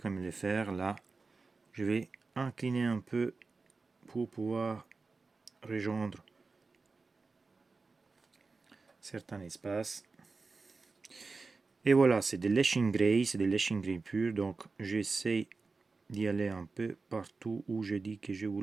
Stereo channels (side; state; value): left; quieter; 4.1 dB